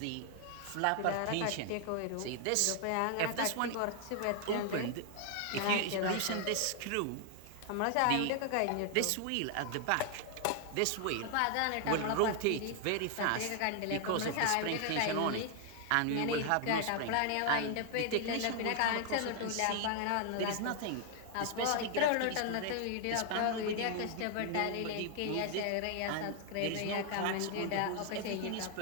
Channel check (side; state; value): both; different; correlation 0.00